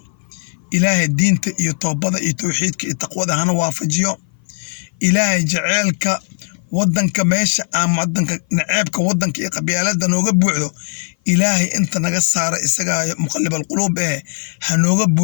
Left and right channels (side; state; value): right; silent; 57 dB below the other